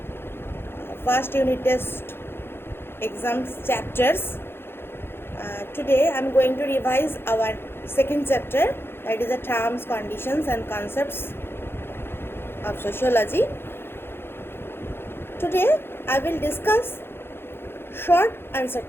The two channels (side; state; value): right; late; 0.11 ms